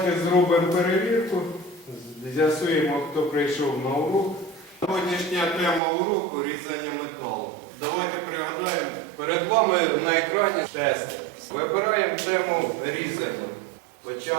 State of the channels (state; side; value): drops out; left; at 5.8 s